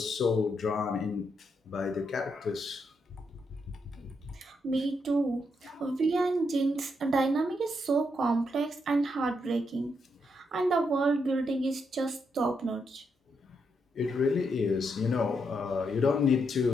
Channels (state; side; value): normal; both; correlation 0.80